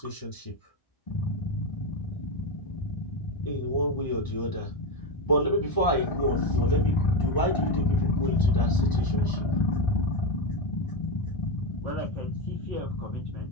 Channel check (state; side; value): late; right; 1.0 ms